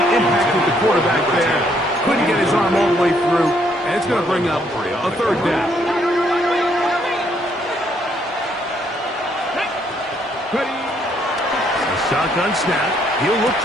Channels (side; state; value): both; normal; correlation 0.70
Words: impacted the quarterback there. Couldn't get his arm all the way through. And it's going to bring up a third down. A shotgun snap. He'll look